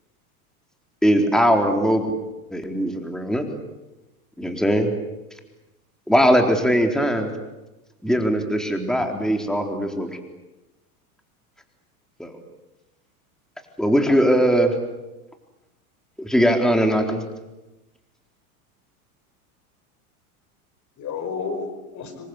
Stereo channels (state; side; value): normal; both; correlation 0.78